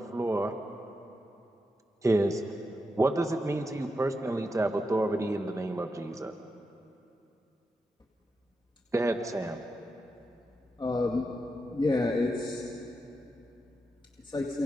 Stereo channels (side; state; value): both; normal; correlation 0.86